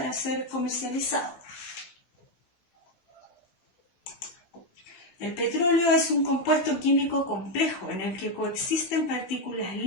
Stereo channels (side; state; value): right; late; 16 ms